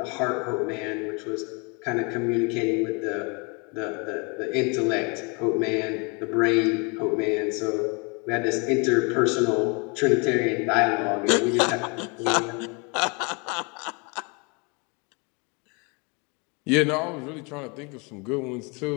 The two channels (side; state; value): right; quieter; 31.4 dB